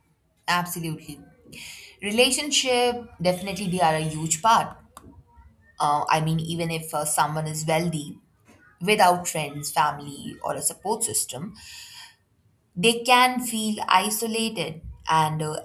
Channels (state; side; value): identical; both; correlation 1.00